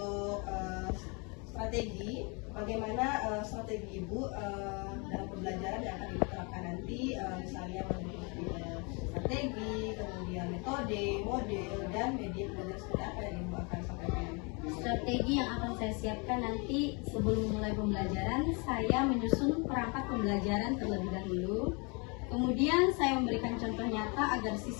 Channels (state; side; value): quieter; right; 31.7 dB